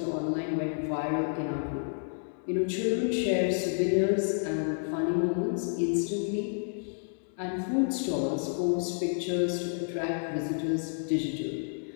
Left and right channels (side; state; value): right; silent; digital silence